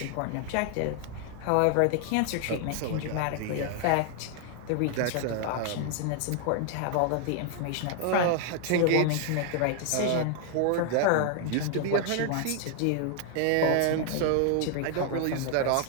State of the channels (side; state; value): both; different; correlation 0.00